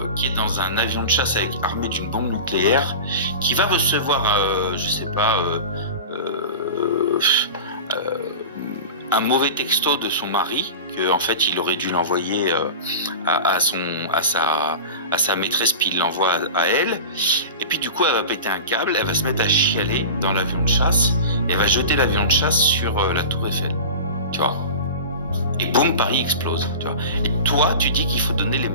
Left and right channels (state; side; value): inverted; both; correlation -0.31